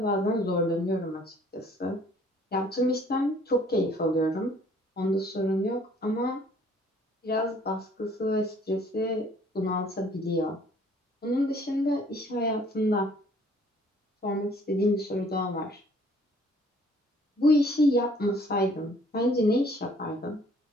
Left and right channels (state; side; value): normal; both; correlation 0.58